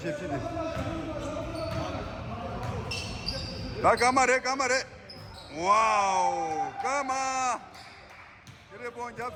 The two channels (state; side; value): identical; both; correlation 1.00